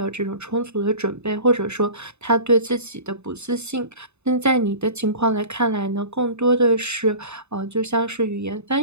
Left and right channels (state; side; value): late; left; 0.81 ms